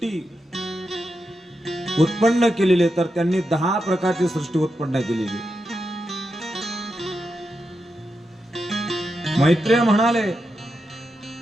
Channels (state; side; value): normal; both; correlation 0.87